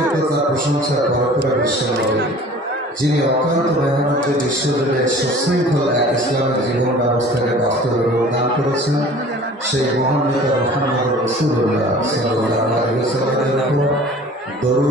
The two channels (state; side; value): normal; both; correlation 0.46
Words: তার প্রশংসা করে বিশ্বনবী, যিনি অক্লান্ত মেহনতে বিশ্বজুড়ে সুশৃঙ্খল এক ইসলামের জীবন ব্যবস্থাকে বাস্তবে রূপ দান করেছেন, সেই মহান নেতা মুহাম্মদ রাসূলুল্লাহ সাল্লাল্লাহু আলাইহি ওয়াসাল্লামের উপর